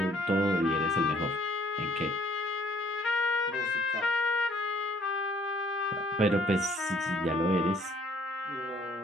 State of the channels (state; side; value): normal; both; correlation 0.61